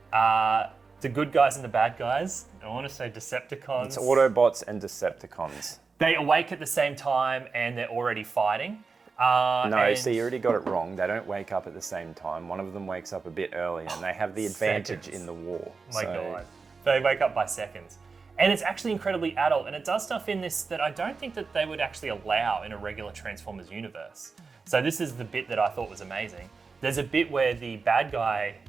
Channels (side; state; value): left; quieter; 4.6 dB